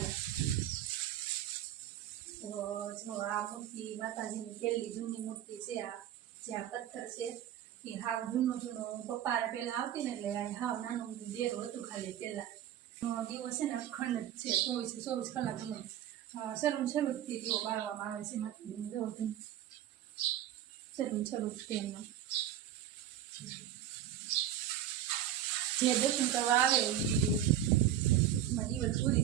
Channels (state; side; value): quieter; left; 10.9 dB